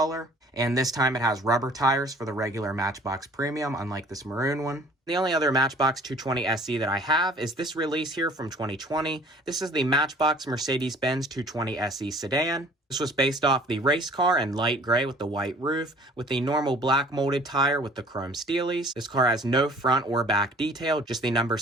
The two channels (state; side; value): normal; both; correlation 0.51